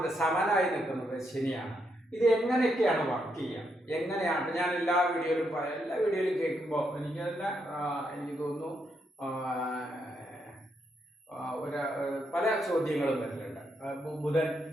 സമനായി നിൽക്കുന്നത് ശനിയാണ്. ഇത് എങ്ങനെയൊക്കെയാണ് വർക്ക് ചെയ്യുക, എങ്ങനെയാണ്? ഞാൻ എല്ലാ വീഡിയോയിലും കേൾക്കുമ്പോൾ എനിക്ക് തോന്നുന്നു പല ചോദ്യങ്ങളും വരുന്നുണ്ട്. ബുധൻ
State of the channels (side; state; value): both; normal; correlation 0.79